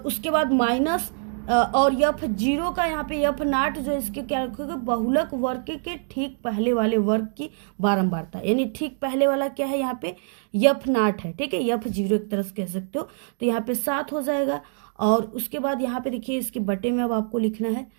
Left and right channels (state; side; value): silent; left; digital silence